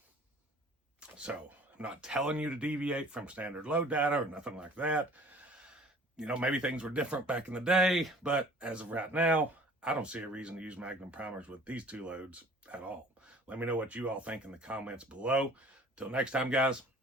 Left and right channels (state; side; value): normal; both; correlation 0.50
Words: So I'm not telling you to deviate from standard load data or nothing like that. You know, maybe things were different back in the day, but as of right now, I don't see a reason to use Magnum primers with these two loads at all. Let me know what you all think in the comments below. Till next time, guys,